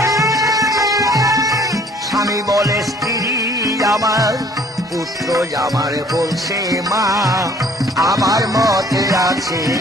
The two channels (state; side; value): normal; both; correlation 0.57